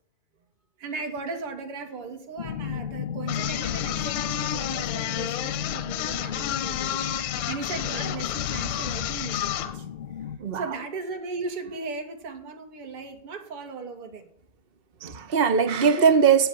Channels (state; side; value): late; left; 2.2 ms